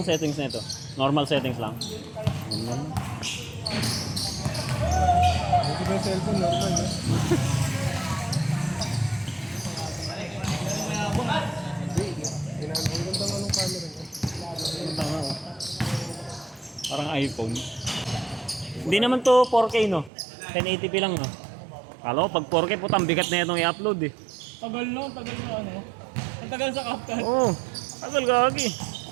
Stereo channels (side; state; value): left; drops out; at 20.1 s